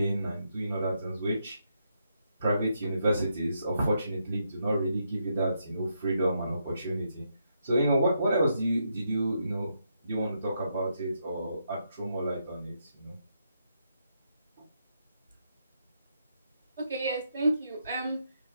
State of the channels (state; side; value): inverted; both; correlation -0.79